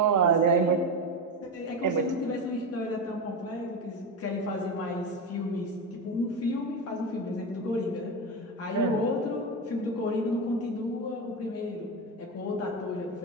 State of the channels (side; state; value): both; normal; correlation 0.17